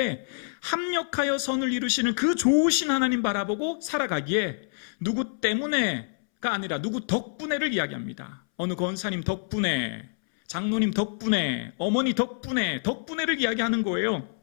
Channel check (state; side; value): silent; right; 60 dB below the other